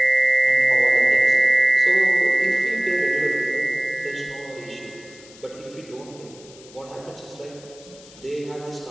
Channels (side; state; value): left; noise; hiss, 22 dB below the sound